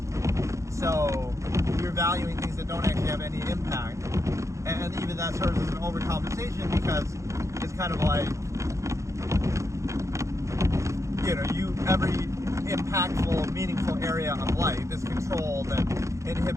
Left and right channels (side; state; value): left; late; 0.15 ms